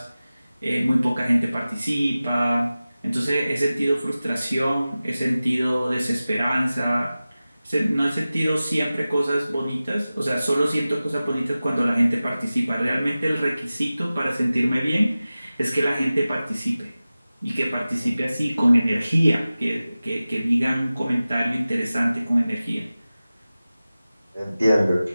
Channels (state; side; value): inverted; both; correlation -0.96